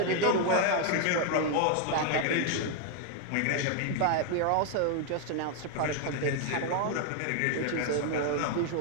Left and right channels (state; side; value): different; both; correlation 0.01